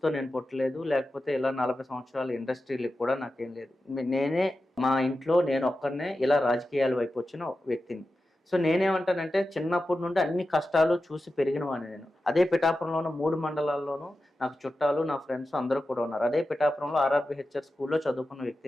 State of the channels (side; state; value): both; normal; correlation 0.92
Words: నేను పుట్టలేదు, లేకపోతే ఇలా 40 సంవత్సరాల ఇండస్ట్రీలకు కూడా నాకేం లేదు. నేనే మా ఇంట్లో నేను ఒక్కరినే ఇలా రాజకీయాల వైపు వచ్చిన వ్యక్తిని. సో నేనేమంటానంటే చిన్నప్పటి నుండి అన్ని కష్టాలు చూసి పెరిగిన వాడిని నేను. అదే పిఠాపురంలోనూ 3 మండలాల్లోనూ నాకు చుట్టాలు, నా ఫ్రెండ్స్ అందరూ కూడా ఉన్నారు. అదే పిఠాపురంలో ఆర్ఆర్బిహెచ్ఆర్ స్కూల్లో చదువుకున్న